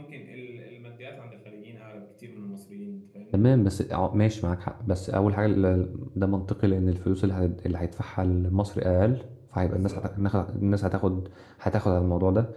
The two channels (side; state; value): both; identical; correlation 1.00